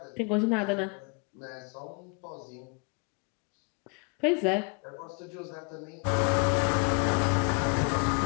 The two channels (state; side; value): quieter; right; 35.0 dB